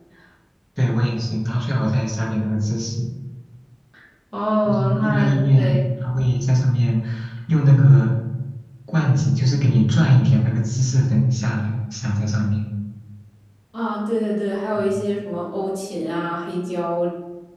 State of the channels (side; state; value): both; identical; correlation 1.00